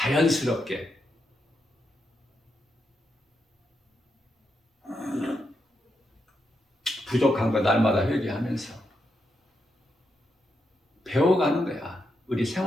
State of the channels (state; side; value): normal; both; correlation 0.83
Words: 부족한 거 날마다 회개하면서 배워가는 거야. 우리